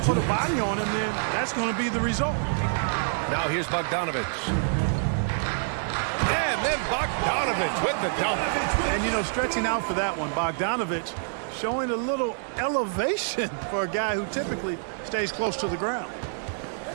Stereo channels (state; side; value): silent; left; digital silence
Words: put a body on him, then that's going to be the result. Now here's Bogdanovich. And then Bogdanovich with the dunk. And, you know, stretching out for that one, Bogdanovich showing a little elevation for a guy who typically stays close to the ground.